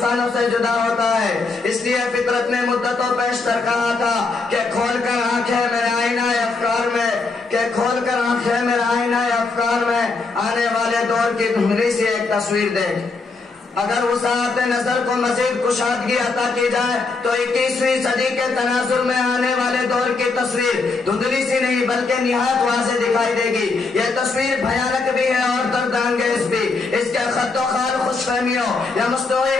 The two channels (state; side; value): quieter; right; 4.0 dB